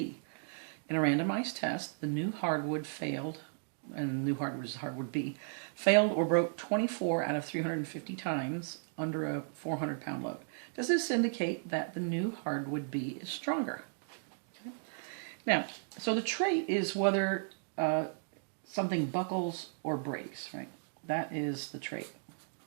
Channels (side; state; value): left; silent; digital silence